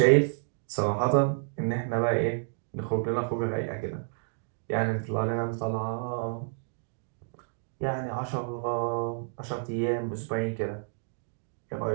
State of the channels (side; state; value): left; silent; digital silence